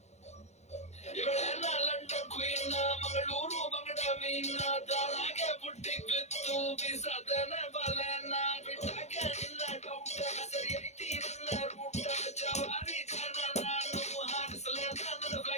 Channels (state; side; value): late; right; 0.32 ms